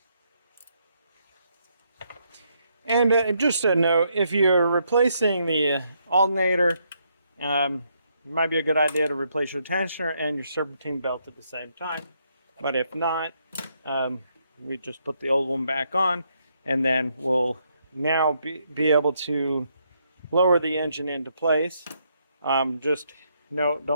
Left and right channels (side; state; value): both; inverted; correlation -0.75